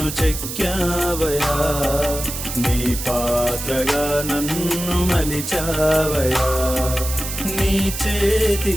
చెక్కావయా, నీ పాత్రగా నన్ను మలిచావయా. నీ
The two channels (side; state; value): right; noise; hiss, 7 dB below the sound